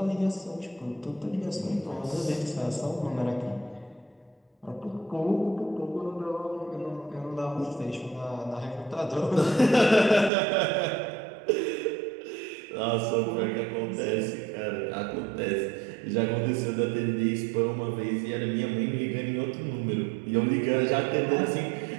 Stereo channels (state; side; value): drops out; left; at 10.3 s